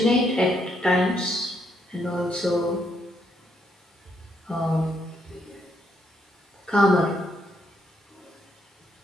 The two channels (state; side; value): normal; both; correlation 0.75